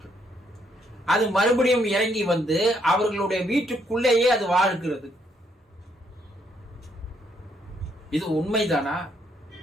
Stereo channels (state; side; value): normal; both; correlation 0.72